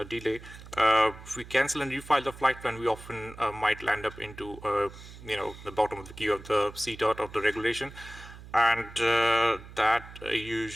delay, if we cancel and refile the flight plan, we often might land up into, the bottom of the queue of the CTOT of the regulation. And that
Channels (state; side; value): noise; right; hum, 16 dB below the sound